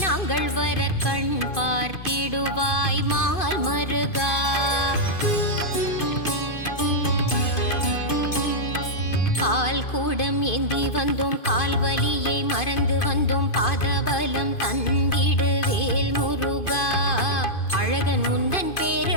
நாங்கள் வர கண் பார்த்திடுவாய் மால் மருகா. பால் கூடம் ஏந்தி வந்தோம் கால்வலியை மறந்து வந்தோம் பாதபலம் தந்திடு வேல் முருகா. அழகன் முந்தன்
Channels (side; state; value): right; late; 2.5 ms